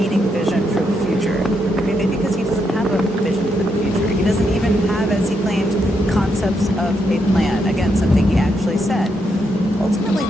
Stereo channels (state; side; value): normal; both; correlation 0.79